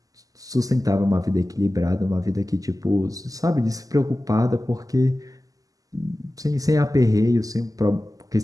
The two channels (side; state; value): left; late; 0.17 ms